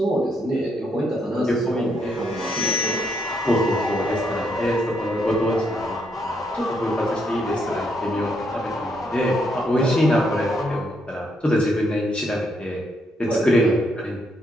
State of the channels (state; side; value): normal; both; correlation 0.74